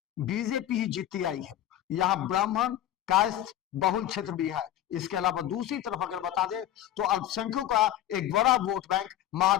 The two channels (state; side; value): quieter; right; 12.3 dB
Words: बीजेपी ही जीतती आई है। यहां ब्राह्मण कायस्थ बहुल क्षेत्र भी है। इसके अलावा दूसरी तरफ अगर बता दें तो अल्पसंख्यकों का एक बड़ा वोट बैंक